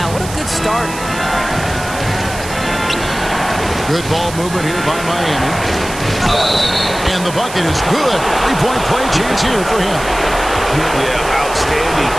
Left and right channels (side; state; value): right; noise; hiss, 12 dB below the sound